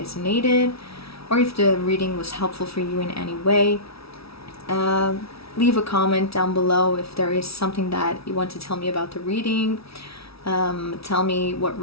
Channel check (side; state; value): right; late; 0.76 ms